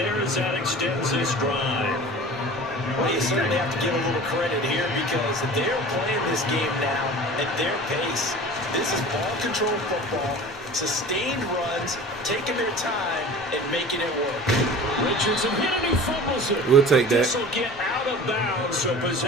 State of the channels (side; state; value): both; normal; correlation 0.39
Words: as that extends this drive. Well, you certainly have to give a little credit here because they're playing this game now at their pace. This is ball control football, sustained runs, taking their time and making it work. Richardson hit and he fumbles it. We'll take that. This will get out of bounds, so